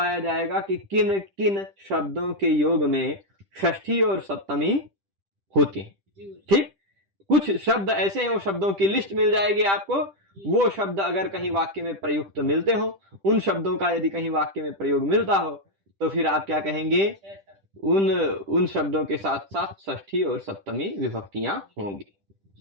जाएगा कि किन किन शब्दों के योग में षष्ठी और सप्तमी होती हैं। ठीक, कुछ शब्द ऐसे हैं, वो शब्दों की लिस्ट मिल जाएगी आपको। वो शब्द अगर कहीं वाक्य में प्रयुक्त मिलते हो, उन शब्दों का यदि कहीं वाक्य में प्रयोग मिलता हो, तो फिर आप क्या कहेंगे? उन शब्दों के साथ साथ षष्ठी और सप्तमी विभक्तियां होंगी।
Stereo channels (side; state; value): left; late; 10 ms